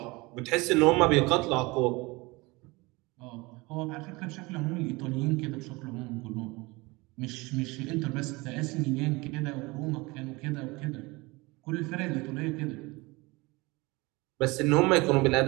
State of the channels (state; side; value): quieter; left; 23.9 dB